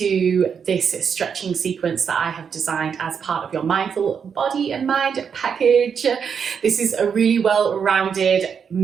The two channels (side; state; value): left; quieter; 6.9 dB